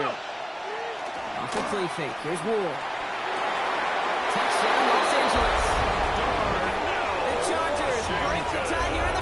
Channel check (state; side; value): identical; both; correlation 1.00